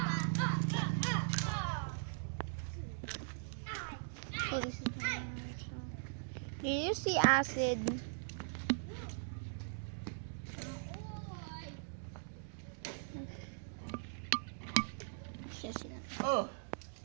So this is do you see acid? Oh.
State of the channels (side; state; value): left; silent; digital silence